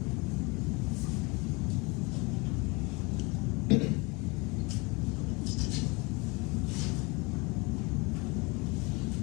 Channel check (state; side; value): quieter; right; 27.5 dB